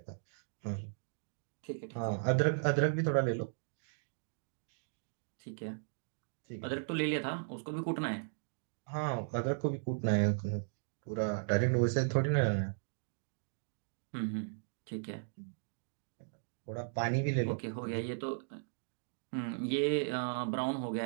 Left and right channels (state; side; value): silent; left; digital silence